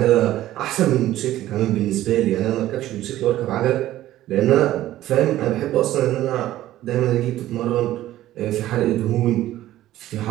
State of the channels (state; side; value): quieter; left; 14.3 dB